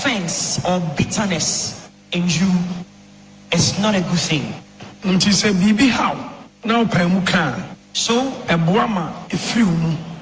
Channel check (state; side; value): identical; both; correlation 1.00